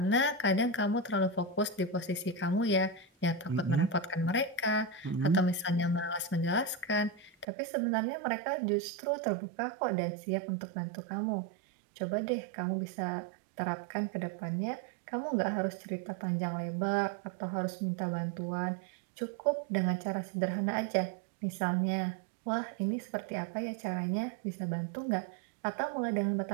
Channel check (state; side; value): drops out; left; at 7.5 s